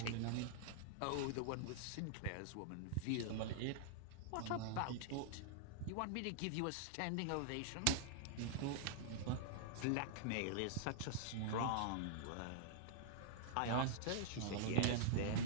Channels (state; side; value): different; both; correlation -0.01